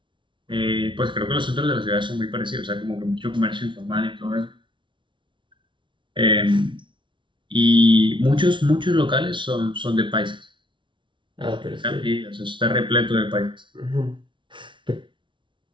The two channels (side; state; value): left; late; 0.24 ms